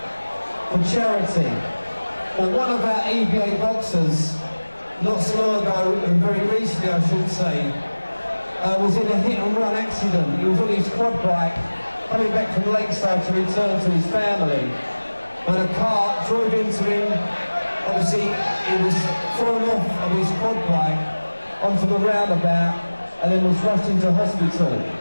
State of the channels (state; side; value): inverted; both; correlation -1.00